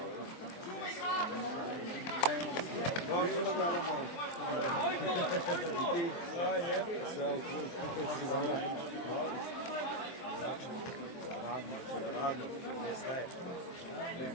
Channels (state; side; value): late; right; 23 ms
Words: Sve u krug, kako si dobro. Radno, ne staje.